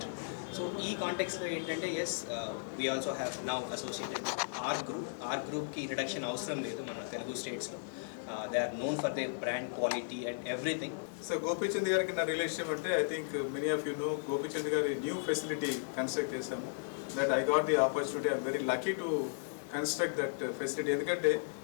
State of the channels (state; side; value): silent; right; digital silence